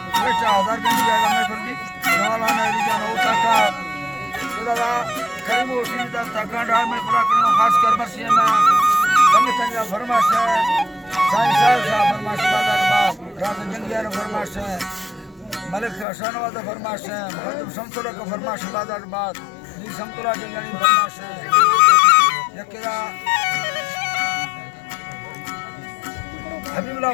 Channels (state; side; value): drops out; right; at 16.1 s